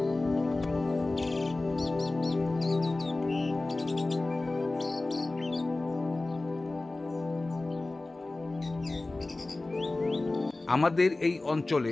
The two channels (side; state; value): right; quieter; 3.0 dB